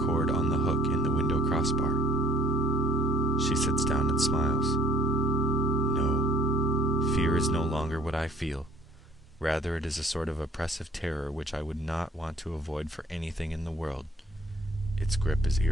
cord on the hook in the window crossbar. She sits down and smiles. No, fear is no longer what I feel. Rather, it is a sort of oppressive terror which I would not want to avoid for anything in the world. Its grip is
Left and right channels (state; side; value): normal; both; correlation 0.55